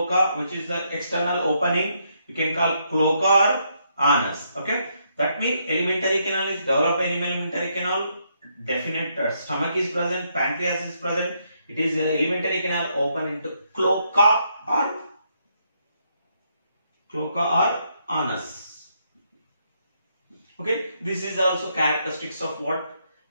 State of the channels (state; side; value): inverted; both; correlation -0.76